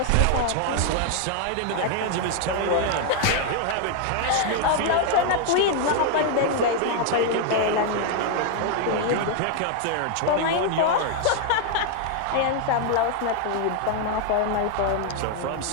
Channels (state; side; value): different; both; correlation 0.00